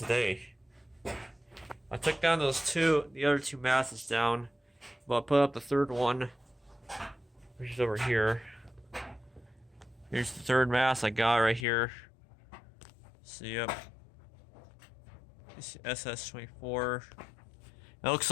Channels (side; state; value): right; drops out; at 11.7 s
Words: I took down the other two masses down, but I put up the third one, which is over here. Here's the third mass I got right here. So, yep. It's SS24. It looks